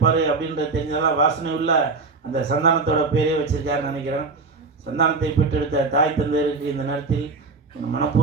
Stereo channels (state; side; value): quieter; left; 4.1 dB